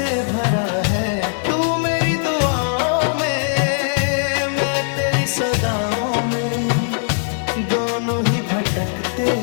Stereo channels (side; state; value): right; silent; digital silence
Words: भरा है। तू मेरी दुआओं में, मैं तेरी सदाओं में, दोनों ही भटकते